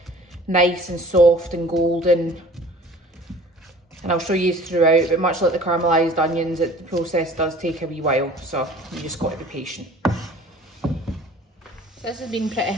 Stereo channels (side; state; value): both; normal; correlation 0.47